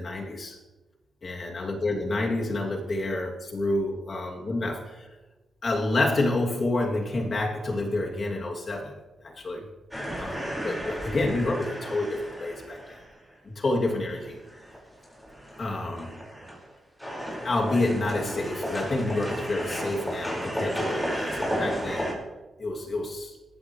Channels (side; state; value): both; normal; correlation 0.88